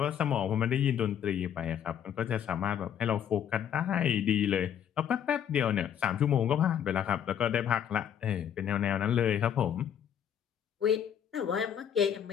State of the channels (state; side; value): quieter; right; 9.1 dB